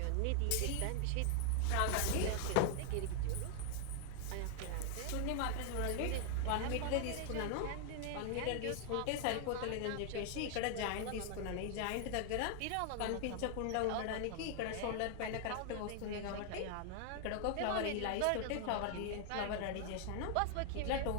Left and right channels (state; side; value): different; both; correlation 0.00